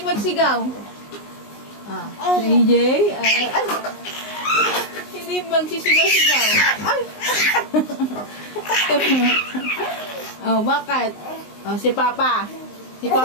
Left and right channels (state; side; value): late; right; 19 ms